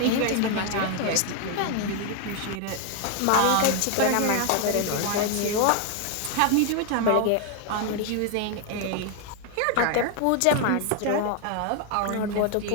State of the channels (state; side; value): different; both; correlation 0.00